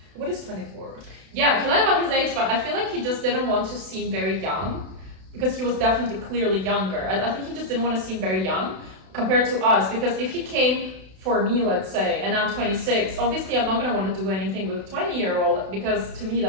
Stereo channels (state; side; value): late; left; 32 ms